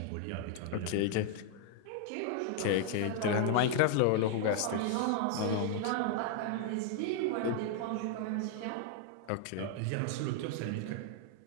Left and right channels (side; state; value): both; different; correlation 0.00